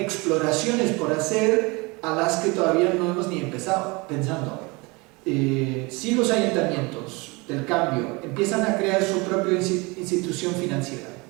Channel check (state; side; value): quieter; left; 26.2 dB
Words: por hacer a las que todavía no hemos ni empezado pensando. Si los ayuntamientos del cambio empiezan a crear su propia institución financiera,